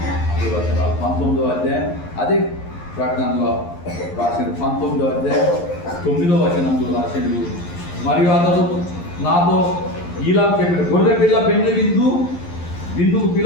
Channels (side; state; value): right; late; 11 ms